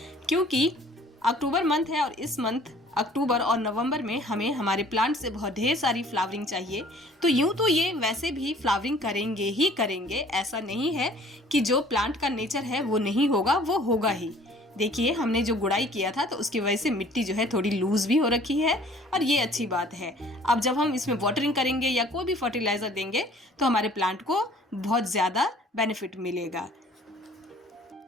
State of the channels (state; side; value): normal; both; correlation 0.53